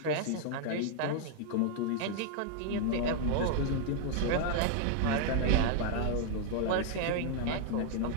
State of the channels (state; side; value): different; both; correlation 0.00